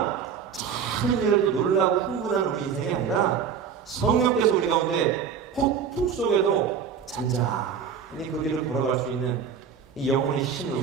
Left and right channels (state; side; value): quieter; left; 7.1 dB